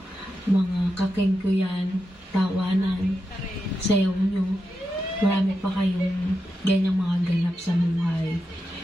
mga kakengkuyan, tawanan, sayaw nyo. Marami pa kayong ganyang mga ganap sa buhay.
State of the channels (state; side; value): normal; both; correlation 0.88